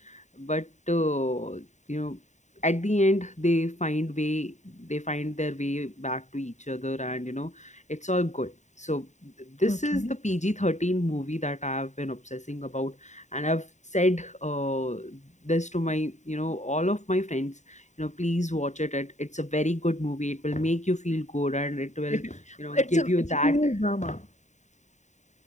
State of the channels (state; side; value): late; right; 0.34 ms